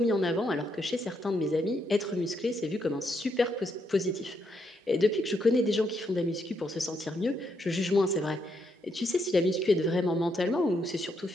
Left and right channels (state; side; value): normal; both; correlation 0.77